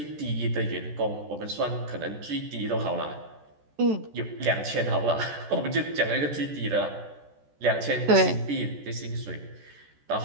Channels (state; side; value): late; left; 14 ms